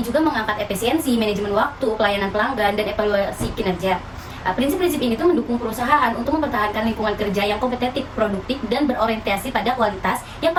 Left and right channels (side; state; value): both; identical; correlation 1.00